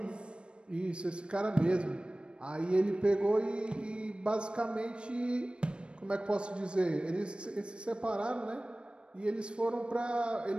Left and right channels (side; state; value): left; late; 0.056 ms